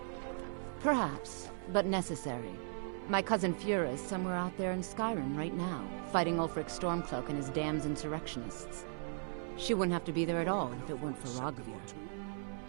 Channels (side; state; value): left; silent; 53 dB below the other